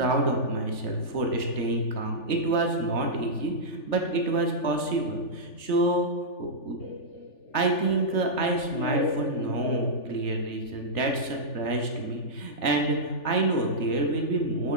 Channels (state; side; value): late; right; 3.4 ms